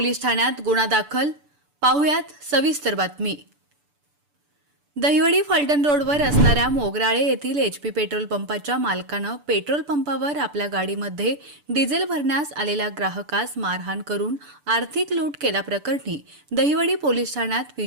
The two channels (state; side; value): late; left; 6.9 ms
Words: ठाण्यात गुन्हा दाखल। पाहुयात सविस्तर बातमी। दहिवडी फलटण रोडवर असणाऱ्या मोगराळे येथील HP पेट्रोल पंपाच्या मालकानं पेट्रोल पंपावर आपल्या गाडीमध्ये डिझेल भरण्यास आलेल्या ग्राहकास मारहाण करून आर्थिक लूट केल्याप्रकरणी दहिवडी पोलीस ठाण्यात